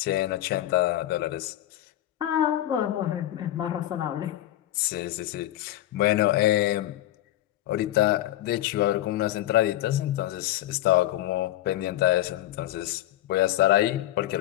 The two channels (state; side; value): quieter; right; 14.2 dB